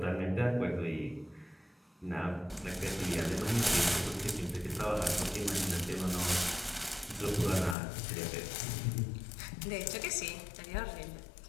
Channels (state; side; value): drops out; right; at 7.8 s